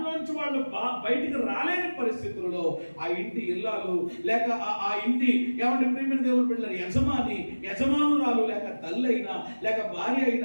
వాళ్ళు బయటికి రాలేని పరిస్థితులలో ఆ ఇంటి ఇల్లాలు లేక ఆ ఇంటి ఏమంటే ప్రియమైన దేవుని బిడ్డల యజమానురాలు లేక తల్లి అయినా లేక భార్య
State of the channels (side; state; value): both; inverted; correlation -1.00